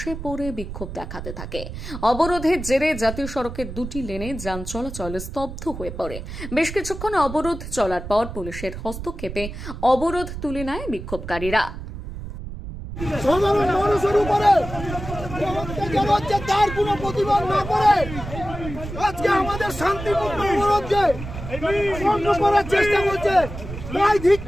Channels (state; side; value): noise; right; rumble, 9 dB below the sound